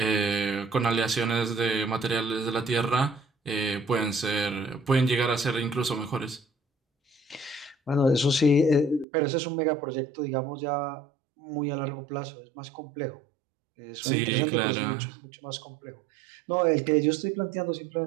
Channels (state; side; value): drops out; left; at 9.1 s